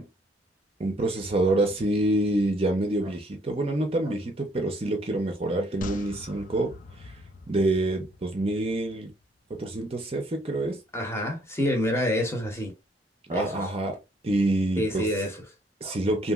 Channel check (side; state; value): both; normal; correlation 0.65